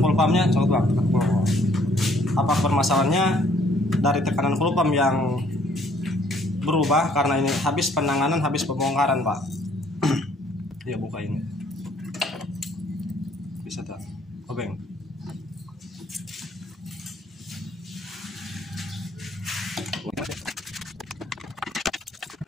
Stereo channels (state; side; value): normal; both; correlation 0.62